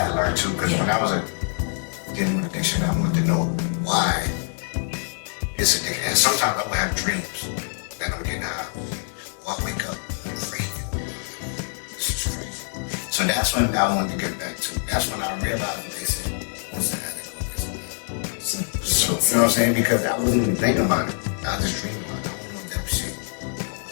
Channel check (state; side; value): silent; right; 56 dB below the other